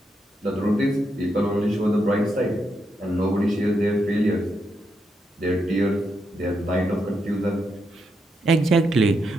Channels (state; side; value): normal; both; correlation 0.82